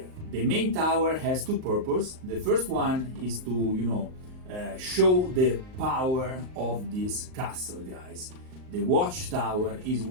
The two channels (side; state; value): left; late; 38 ms